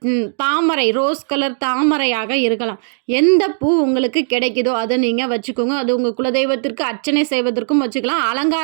தாமரை ரோஸ் கலர் தாமரையாக இருக்கலாம். எந்த பூ உங்களுக்கு கிடைக்குதோ அதை நீங்கள் வச்சுக்கோங்க. அது உங்கள் குலதெய்வத்திற்கு அர்ச்சனை செய்வதற்கும் வச்சுக்கலாம்,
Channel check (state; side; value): silent; left; digital silence